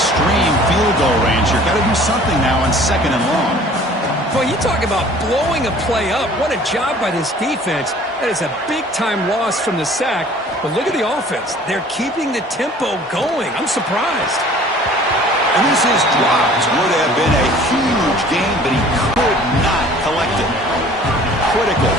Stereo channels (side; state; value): both; normal; correlation 0.50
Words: field goal range here. Got to do something now on 2nd and long. Boy, you talk about blowing a play up. What a job by this defense. That is a big-time loss from the sack. But look at the offense. They're keeping the tempo going. I'm surprised. And this is dropped. Would have been a huge game, but he could not collect it. Critical